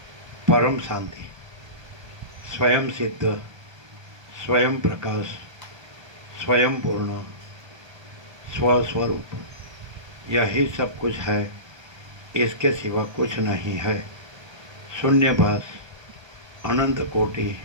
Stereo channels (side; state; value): left; late; 1.3 ms